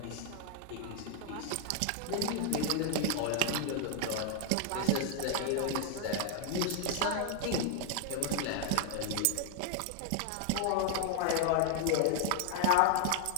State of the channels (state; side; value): different; both; correlation 0.00